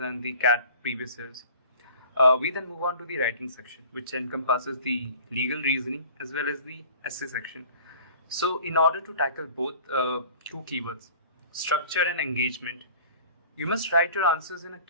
the CAT previous years. We then move on to the writing section, which encompasses the legal reasoning as well as the essay section. So in order to tackle both two keywords, structure and engagement, you must write your answers in a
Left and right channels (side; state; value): both; inverted; correlation -0.46